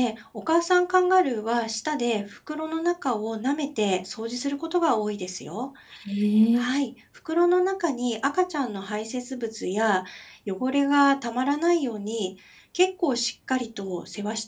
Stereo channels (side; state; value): both; identical; correlation 1.00